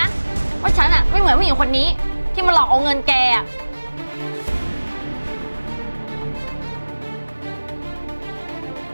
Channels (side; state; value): both; inverted; correlation -1.00